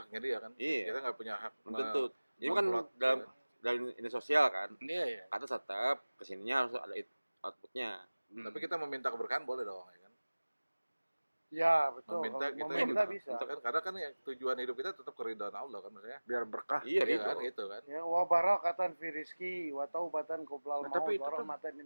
dia kan. Iya. Kita nggak punya hak. Belum tentu. Ini kan memplot. dalam ini sosial kan. Iya, iya. Kata tetap kesininya harus ada outputnya. Tapi kita meminta keberkahan boleh dong, ya kan? Ya betul. Meminta Kalau kita meminta bisa. karena kan ya, tujuan hidup kita tetap keridhaan Allah kan maksudnya. Biar berkah. Iya, Iya gitu. kan, itu kan. Ya wa barakatan fi rizki wa taubatan qoblal Nah, maut tapi itu wa kan- rahmatan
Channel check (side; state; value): both; inverted; correlation -1.00